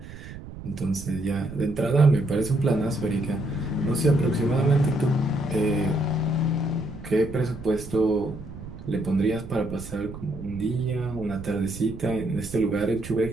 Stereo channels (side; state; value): right; noise; rumble, 13 dB below the sound